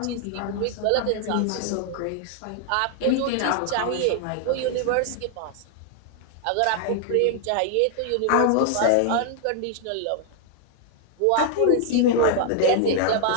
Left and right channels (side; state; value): both; different; correlation 0.00